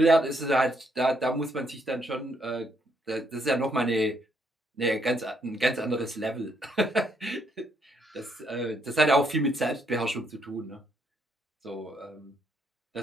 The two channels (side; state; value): both; normal; correlation 0.73